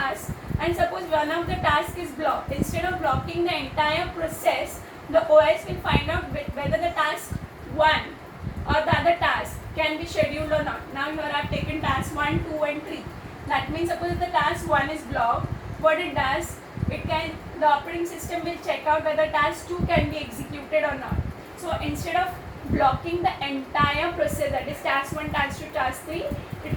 and suppose one of the tasks is blocked, instead of blocking the entire process, the OS will find out whether the task 1 or the other task can be scheduled or not. Now here I have taken task 1, 2 and 3. That means suppose if the task 1 is blocked, what it does, the operating system will check out whether task 2 can be executed or not. So instead of blocking the entire process, that is task 1, task 2, task 3, it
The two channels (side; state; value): both; identical; correlation 1.00